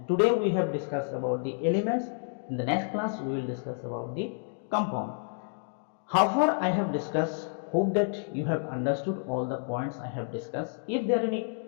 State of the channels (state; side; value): silent; right; 58 dB below the other